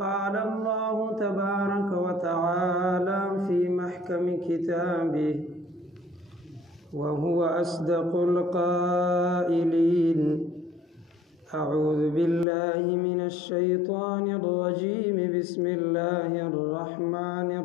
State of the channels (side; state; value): right; drops out; at 12.5 s